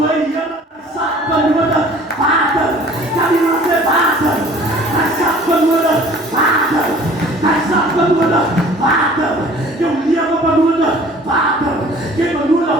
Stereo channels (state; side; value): normal; both; correlation 0.50